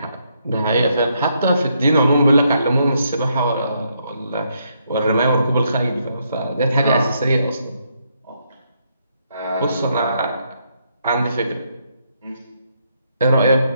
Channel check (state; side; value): inverted; both; correlation -0.76